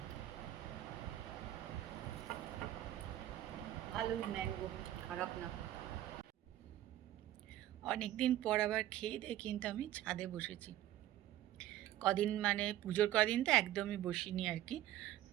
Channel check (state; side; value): quieter; left; 13.4 dB